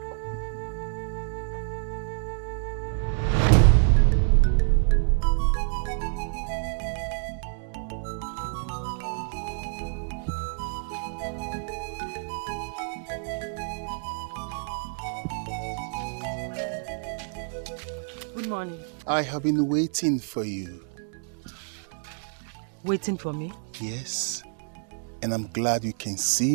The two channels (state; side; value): silent; left; digital silence